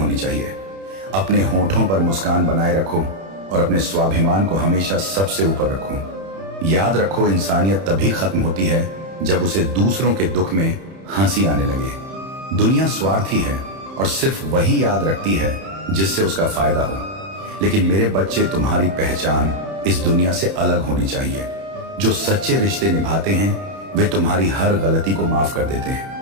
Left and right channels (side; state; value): left; late; 31 ms